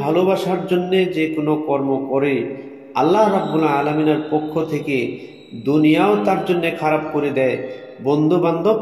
ভালোবাসার জন্যে যে কোনো কর্ম করে, আল্লাহ রাব্বুল আলামিনের পক্ষ থেকে দুনিয়াও তার জন্য খারাপ করে দেয়, বন্ধু বান্ধব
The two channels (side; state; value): both; identical; correlation 1.00